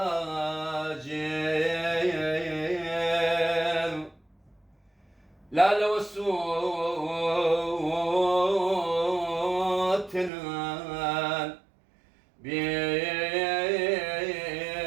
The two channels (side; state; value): left; drops out; at 10.3 s